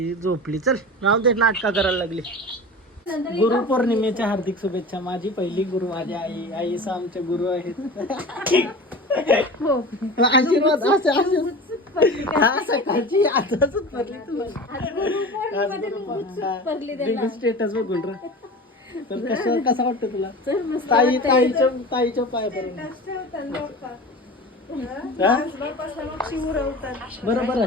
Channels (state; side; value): normal; both; correlation 0.34